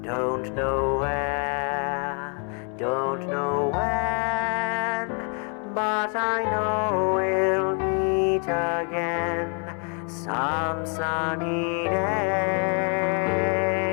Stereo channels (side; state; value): right; quieter; 39.4 dB